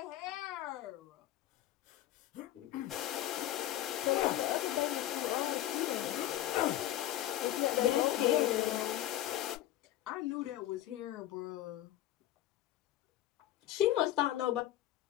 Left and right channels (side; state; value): right; quieter; 13.8 dB